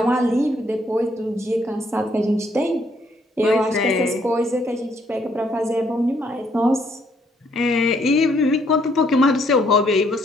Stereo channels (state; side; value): normal; both; correlation 0.69